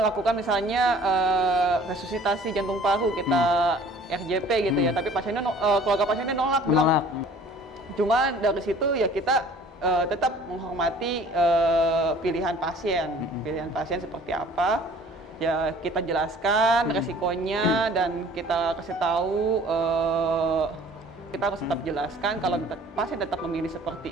misalnya resusitasi jantung paru, kita RJP gitu ya, tapi pasiennya keluarga pasiennya nolak, bilang. Cuma dari situ ya kita tetap menghormati pilihan pasien seperti apa. Ya kita jelaskan resikonya dan kita kasih tahu, kita harus tetap jelaskan kalau pasien tetap memilih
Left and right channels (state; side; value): normal; both; correlation 0.50